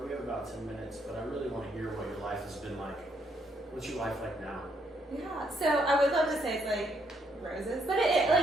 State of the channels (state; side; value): normal; both; correlation 0.73